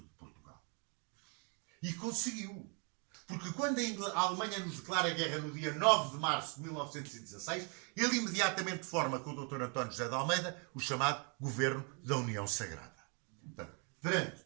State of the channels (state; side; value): quieter; left; 36.5 dB